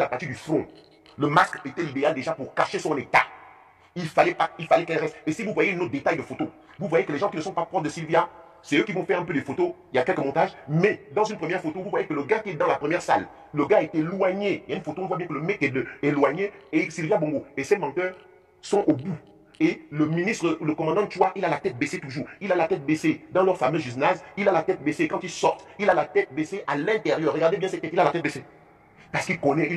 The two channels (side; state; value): both; identical; correlation 1.00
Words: partie du front. Le masque était idéal déjà pour cacher son état. Il fallait qu'elle reste. Et si vous voyez une autre détail de photo, vous voyez que les gens qui ne sont pas proches de Sylvia, c'est eux qui vont faire un peu des photos. Il y a quelques montages. Mais dans une première photo, vous voyez que le gars qui est dans la première salle, le gars est éloigné. Il y a une photo, on voit bien que le mec est éloigné et Sylvia Bongo. Et ces menteurs sont au bout. Et le ministre, le commandant Chua, il a la tête baissée toujours. Il a la tête baissée dans leur fameux gymnase. Il a la tête baissée quand ils sortent. Il a la tête baissée à l'intérieur. Regardez bien cette tête, il a la tête baissée. Parce qu'il connaît,